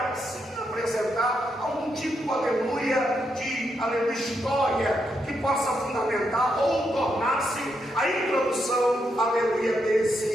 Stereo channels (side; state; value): both; normal; correlation 0.81